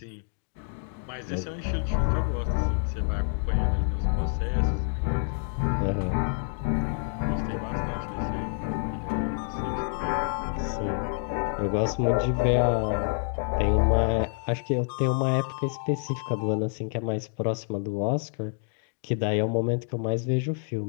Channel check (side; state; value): right; silent; 58 dB below the other